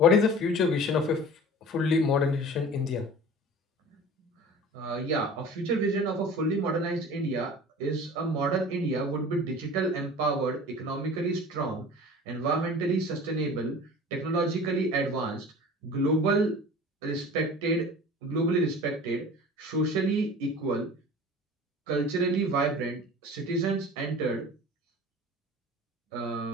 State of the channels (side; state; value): both; normal; correlation 0.40